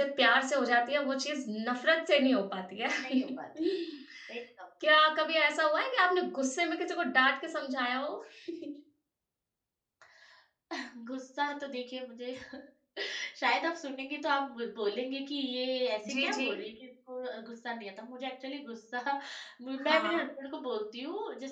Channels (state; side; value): identical; both; correlation 1.00